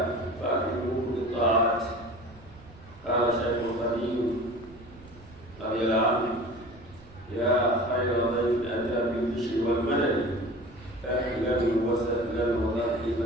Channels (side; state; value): right; noise; rumble, 22 dB below the sound